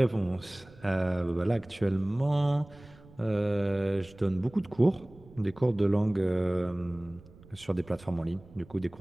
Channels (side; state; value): right; noise; rumble, 23 dB below the sound